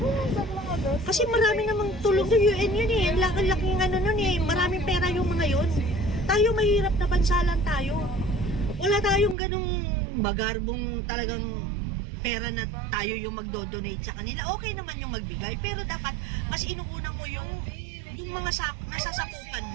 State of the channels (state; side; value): drops out; left; at 9.3 s